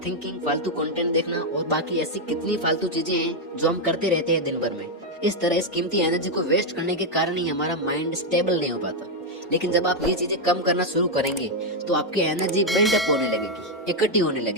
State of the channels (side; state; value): both; normal; correlation 0.02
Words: थिंकिंग, फालतू कंटेंट देखना और बाकी ऐसी कितनी फालतू चीजें हैं जो हम करते रहते हैं दिन भर में, इस तरह इस कीमती एनर्जी को वेस्ट करने के कारण ही हमारा माइंड स्टेबल नहीं हो पाता। लेकिन जब आप ये चीजें कम करना शुरू करेंगे तो आपकी एनर्जी बिल्डअप होने लगेगी, इकट्ठी होने